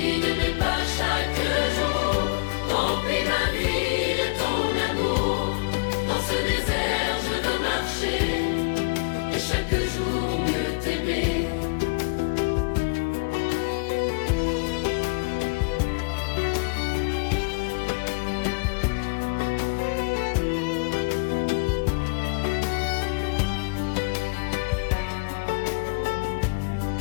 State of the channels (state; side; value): quieter; right; 31.1 dB